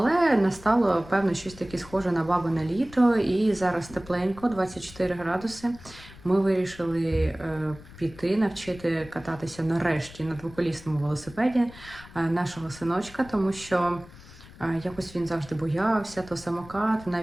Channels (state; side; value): noise; left; rumble, 19 dB below the sound